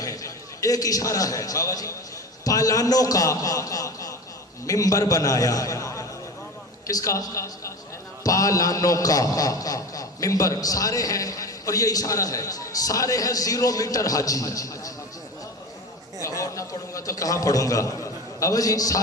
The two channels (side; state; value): both; normal; correlation 0.30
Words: ہیں، ایک اشارہ ہے بابا جی، پالانوں کا منبر بنایا۔ کس کا؟ پالانوں کا منبر، سارے ہیں، اور یہ اشارہ ہے، سارے ہیں 0 میٹر حاجی۔ اور نہ پڑھوں گا تو کہاں پڑھوں گا بابا جی؟